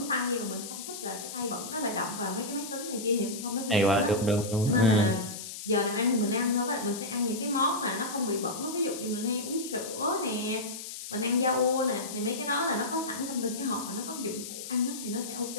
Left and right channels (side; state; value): left; noise; hiss, 9 dB below the sound